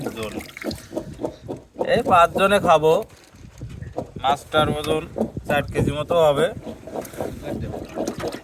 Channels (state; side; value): identical; both; correlation 1.00